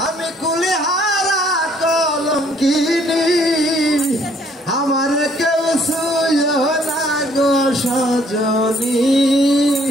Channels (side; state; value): both; normal; correlation 0.63